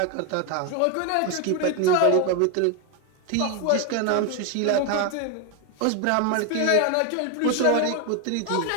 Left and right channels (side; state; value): both; different; correlation 0.01